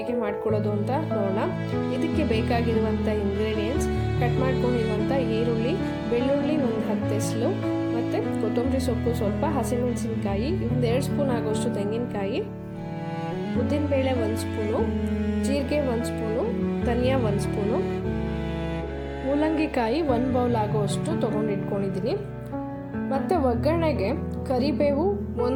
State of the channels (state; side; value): identical; both; correlation 1.00